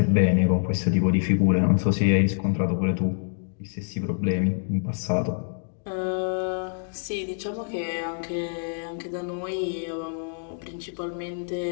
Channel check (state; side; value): silent; right; digital silence